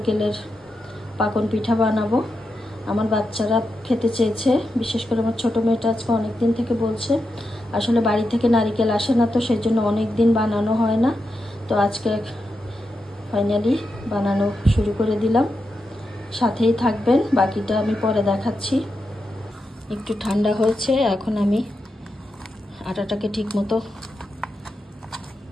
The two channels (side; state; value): both; normal; correlation 0.87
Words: পাকন পিঠা বানাবো। আমার বাচ্চারা খেতে চেয়েছে, বিশেষ করে আমার ছোটো মেয়েটা আজকে অনেক দিন থেকে বলছে। আসলে বাড়ি থেকে নারকেল আসে না, তো সেই জন্য অনেক দিন বানানো হয় না। তো আজকে ফাইনালি বানানো শুরু করে দিলাম। সাথেই থাকবেন, বাকিটা আমি পরে দেখাচ্ছি। একটু ঠান্ডা হয়েছে, এখন আমি আটাটাকে ঠিকমতো